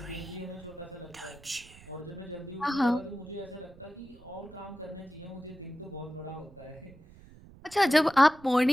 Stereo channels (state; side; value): noise; right; rumble, 21 dB below the sound